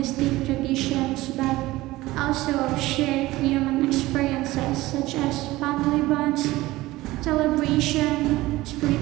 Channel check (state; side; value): quieter; left; 18.3 dB